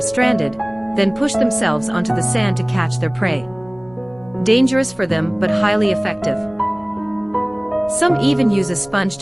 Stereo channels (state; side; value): noise; right; hum, 27 dB below the sound